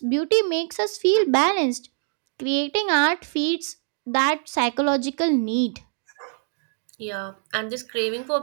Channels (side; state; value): left; silent; 56 dB below the other